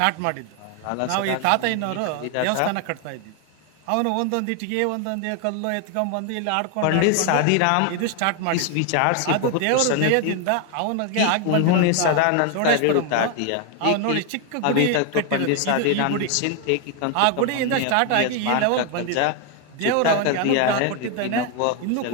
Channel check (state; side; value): different; both; correlation 0.01